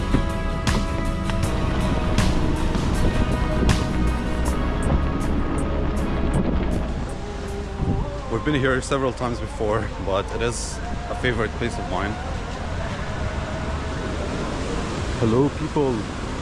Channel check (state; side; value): identical; both; correlation 1.00